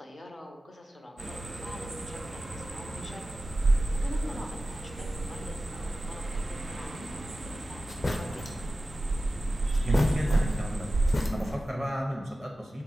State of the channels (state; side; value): normal; both; correlation 0.95